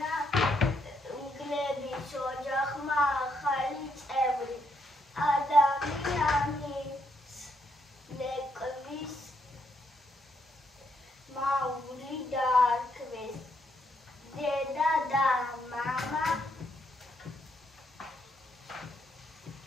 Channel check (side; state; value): both; normal; correlation 0.76